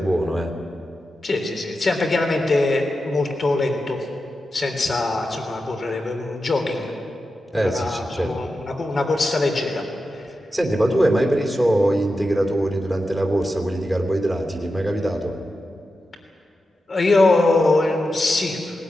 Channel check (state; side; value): normal; both; correlation 0.90